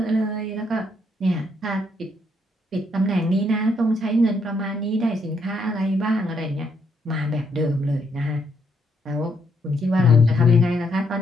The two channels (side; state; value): both; normal; correlation 0.74